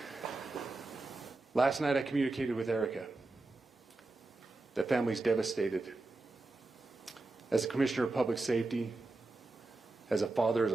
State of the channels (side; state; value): left; quieter; 3.2 dB